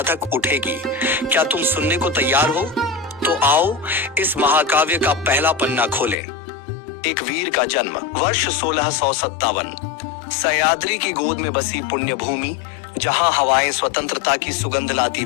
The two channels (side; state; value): right; drops out; at 6.2 s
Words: उठेगी। क्या तुम सुनने को तैयार हो? तो आओ इस महाकाव्य का पहला पन्ना खोलें। एक वीर का जन्म, वर्ष 1657। सह्याद्री की गोद में बसी पुण्य भूमि, जहां हवाएं स्वतंत्रता की सुगंध लाती